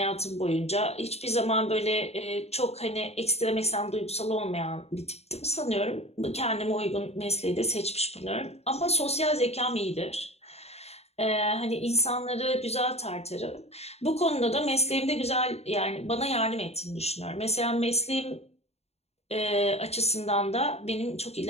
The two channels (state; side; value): late; right; 0.30 ms